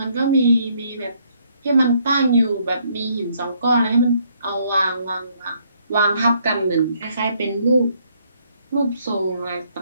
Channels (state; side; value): inverted; both; correlation -0.69